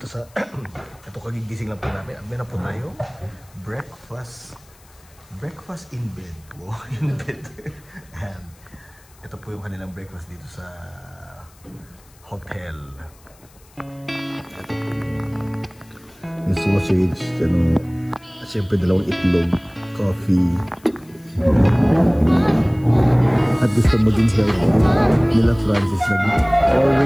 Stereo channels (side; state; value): left; noise; hiss, 28 dB below the sound